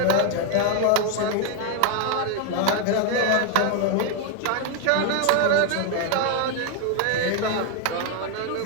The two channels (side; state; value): both; different; correlation 0.01